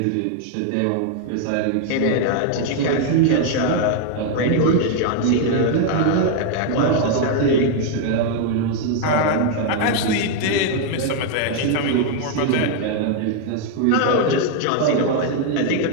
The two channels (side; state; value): both; different; correlation 0.00